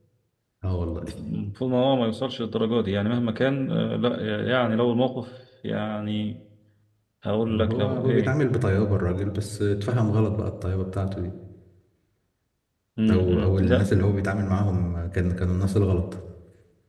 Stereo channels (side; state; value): both; identical; correlation 1.00